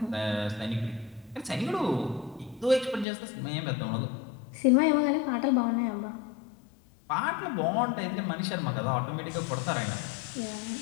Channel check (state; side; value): drops out; right; at 3.1 s